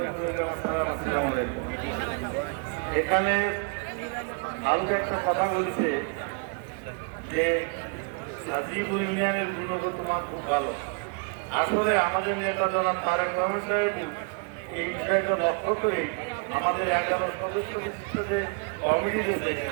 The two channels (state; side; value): quieter; left; 35.5 dB